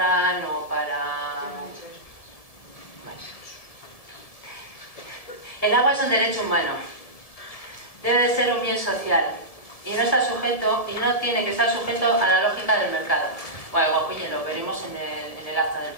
o para... Bueno. El agua es un derecho humano, debe de ser un bien social y no está sujeto, y no tiene que estar sujeto a la lógica del mercado. Bueno, Boquiñe, lo veremos en el acta del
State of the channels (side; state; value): right; late; 1.7 ms